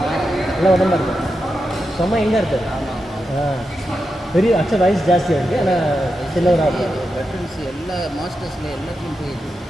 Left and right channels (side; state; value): both; normal; correlation 0.88